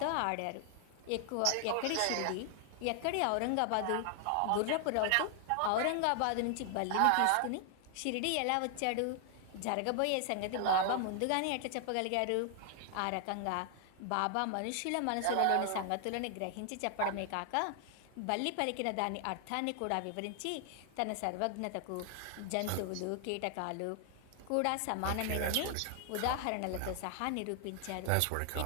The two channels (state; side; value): different; both; correlation 0.00